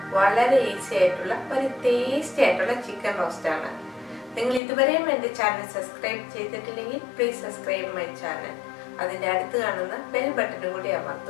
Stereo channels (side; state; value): right; drops out; at 4.6 s